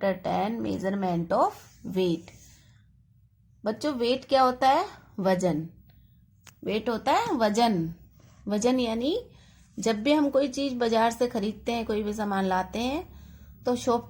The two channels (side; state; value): both; identical; correlation 1.00